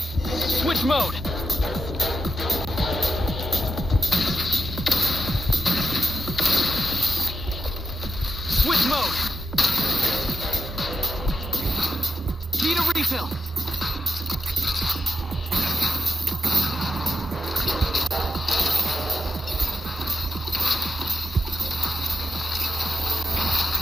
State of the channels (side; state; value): both; normal; correlation 0.87